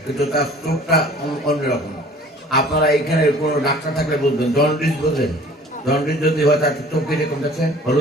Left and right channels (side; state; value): both; normal; correlation 0.49